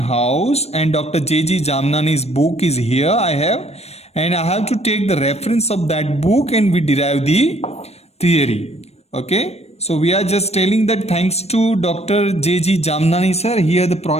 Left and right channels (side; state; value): right; late; 0.31 ms